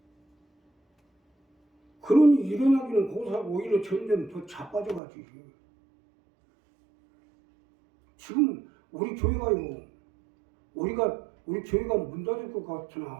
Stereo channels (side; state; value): left; drops out; at 5.0 s